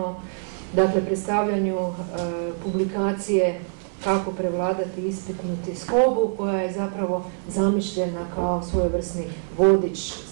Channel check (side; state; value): left; silent; 62 dB below the other